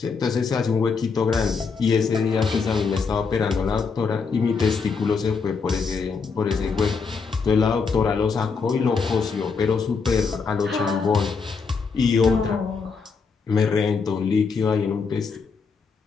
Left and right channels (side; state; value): right; quieter; 5.1 dB